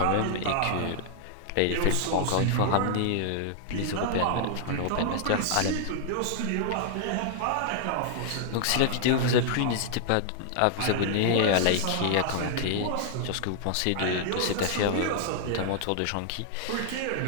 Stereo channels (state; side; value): different; both; correlation -0.01